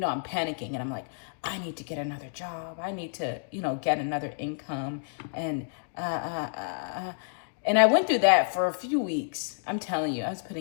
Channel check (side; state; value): right; silent; digital silence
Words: panicking, and I'm like, I need to get another job. I need to, get another income. And I went through that for a few weeks. I'm telling you, I was